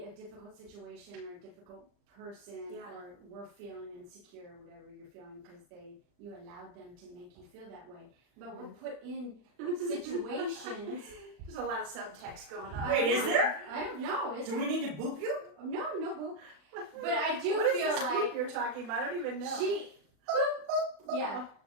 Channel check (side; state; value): left; late; 40 ms